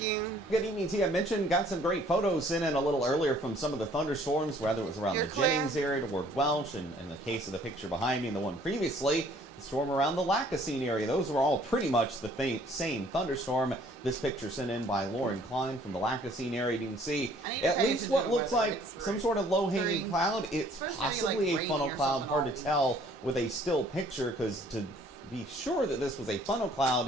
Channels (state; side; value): normal; both; correlation 0.58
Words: Good evening to you. I mentioned, got some great photos sent in a little earlier from some of the thunderstorms, whether it was around the Jennings area toward Welch, and in the case of the picture behind me and the one previously, the storm around the Lacassine area. Those were all pretty much the same thunderstorm. This picture sent in by Lauren Klein from the Lacassine area. You can see at least what looks like some sort of low-hanging cloud. It's possibly a funnel cloud. Hard to tell with a still picture, because to be sure that this was a funnel